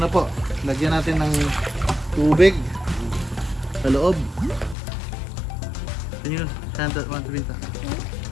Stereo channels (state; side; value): drops out; right; at 4.8 s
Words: po. Lagyan natin ng tubig sa loob. Can you hand that one to Vinta?